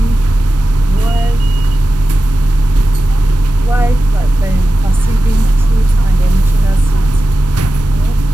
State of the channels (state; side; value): normal; both; correlation 0.94